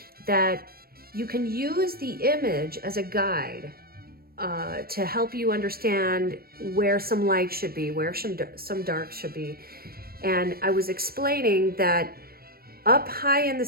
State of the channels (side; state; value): left; late; 0.44 ms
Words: that you can use the image as a guide to help you understand where some light should be, where some dark should be. And I was explaining that up high in the